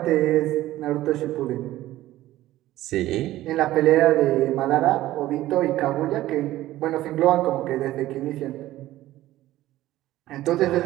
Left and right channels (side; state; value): left; quieter; 15.4 dB